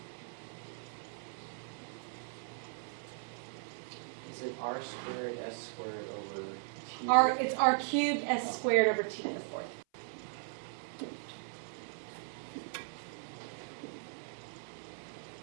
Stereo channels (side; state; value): left; silent; 53 dB below the other